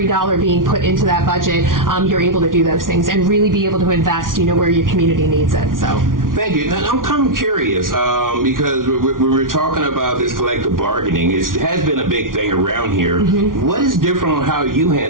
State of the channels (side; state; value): left; late; 0.89 ms